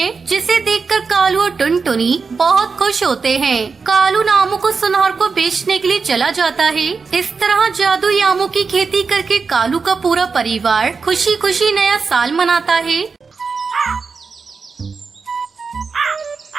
जिसे देखकर कालू और टुनटुनी बहुत खुश होते हैं। कालू आमों को सुनार को बेचने के लिए चला जाता है। इस तरह जादुई आमों की खेती करके कालू का पूरा परिवार खुशी खुशी नया साल मनाता है।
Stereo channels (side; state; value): left; quieter; 4.9 dB